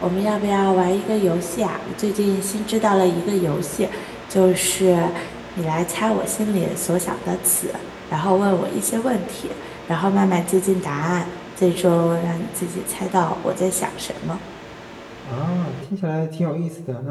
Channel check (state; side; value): identical; both; correlation 1.00